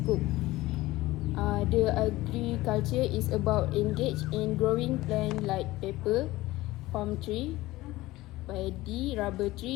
The agriculture is about engage in growing plant like pepper, palm tree, paddy, rubber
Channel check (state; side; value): quieter; right; 18.3 dB